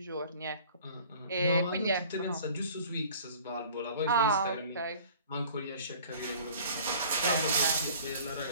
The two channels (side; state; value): both; inverted; correlation -0.49